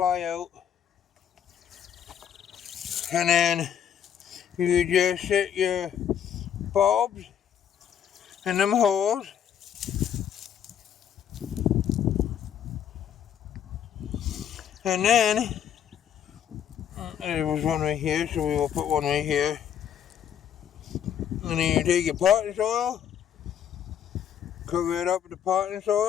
out. And then you just set your bulbs in them holes. And then, there was one right here, so we will put one right here. And then you take your potting soil, cover it up with the potting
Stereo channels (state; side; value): quieter; right; 9.1 dB